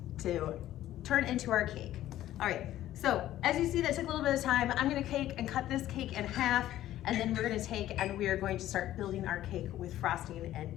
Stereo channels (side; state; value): right; quieter; 13.5 dB